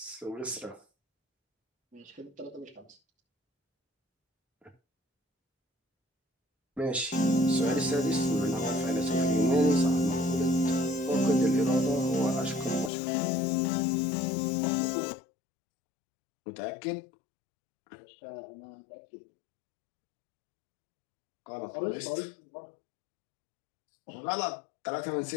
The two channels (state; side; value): drops out; right; at 12.9 s